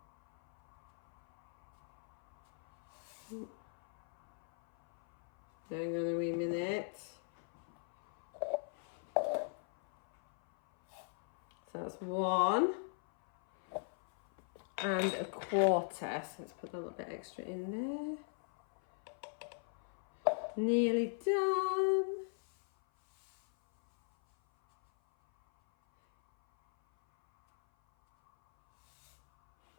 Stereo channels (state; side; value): silent; right; 52 dB below the other